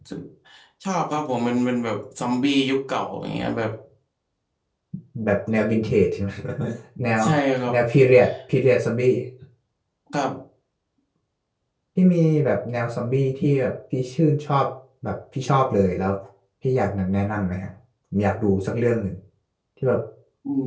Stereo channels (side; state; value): both; identical; correlation 1.00